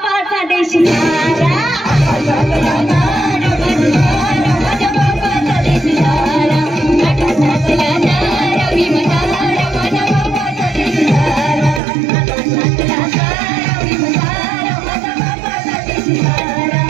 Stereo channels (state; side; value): drops out; left; at 11.8 s